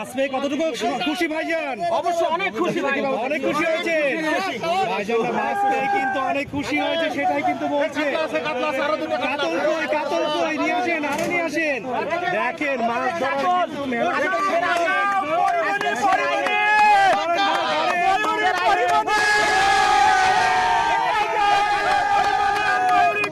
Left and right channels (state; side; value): identical; both; correlation 1.00